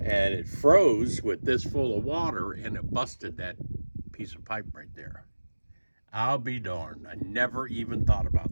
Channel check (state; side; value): inverted; both; correlation -1.00